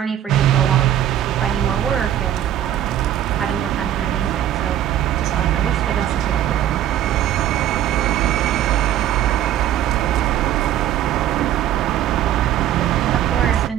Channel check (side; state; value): left; quieter; 11.5 dB